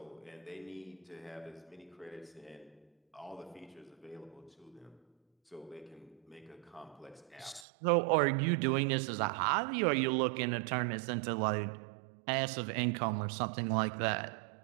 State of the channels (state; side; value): drops out; left; at 7.7 s